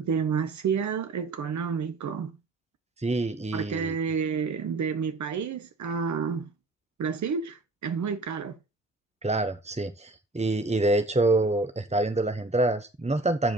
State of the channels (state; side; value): quieter; left; 3.2 dB